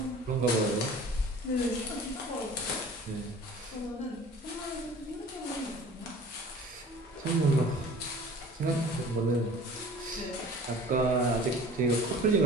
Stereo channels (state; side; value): normal; both; correlation 0.45